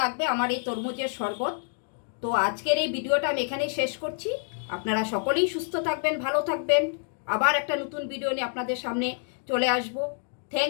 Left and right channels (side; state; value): right; silent; 60 dB below the other